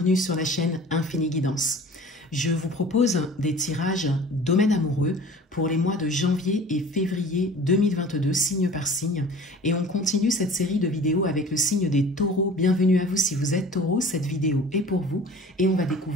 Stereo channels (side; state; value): both; normal; correlation 0.43